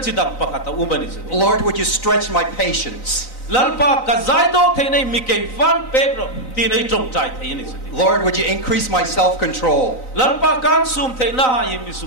"Lord, would you stretch my patience?" "Lord, would you increase my self-control?"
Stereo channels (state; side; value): late; right; 3.9 ms